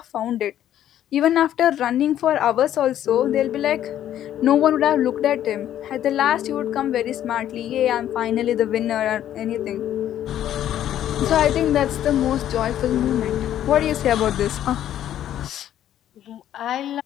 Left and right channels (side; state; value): right; quieter; 11.4 dB